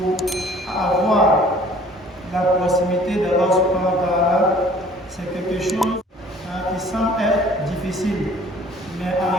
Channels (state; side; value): normal; both; correlation 0.53